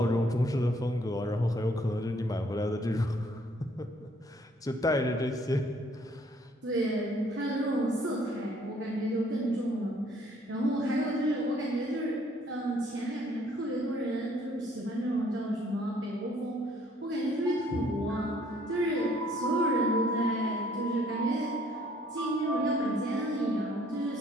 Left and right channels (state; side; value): normal; both; correlation 0.62